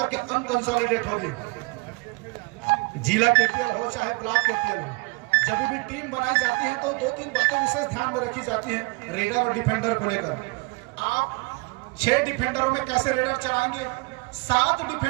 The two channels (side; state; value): left; quieter; 27.5 dB